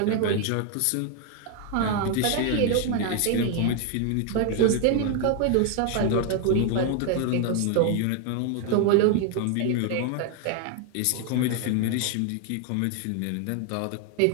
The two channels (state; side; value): different; both; correlation 0.00